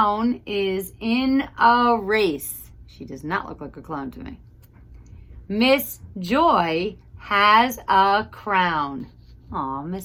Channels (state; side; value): identical; both; correlation 1.00